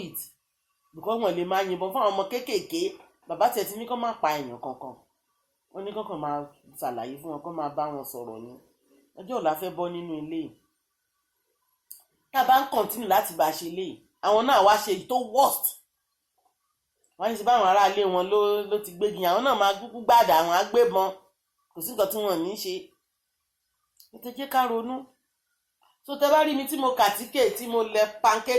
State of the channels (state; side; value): identical; both; correlation 1.00